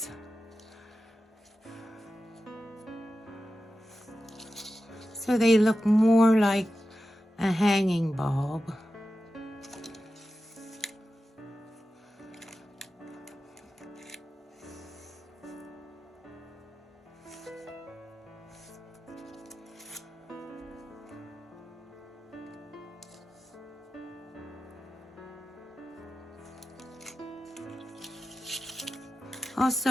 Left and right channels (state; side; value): normal; both; correlation 0.92